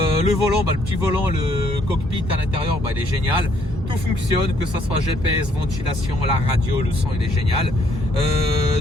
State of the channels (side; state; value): both; normal; correlation 0.68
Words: volant, le petit volant, le cockpit à l'intérieur, il est génial. tout fonctionne, que ce soit GPS, ventilation, la radio, le son il est génial.